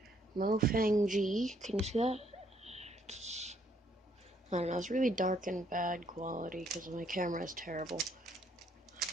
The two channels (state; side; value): normal; both; correlation 0.68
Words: Mofang G. Can you see that? I don't know, it's really dark and bad quality because my camera is terrible.